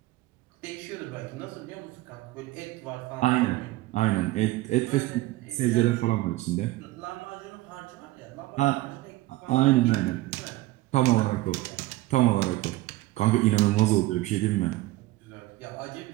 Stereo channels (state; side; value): quieter; left; 17.9 dB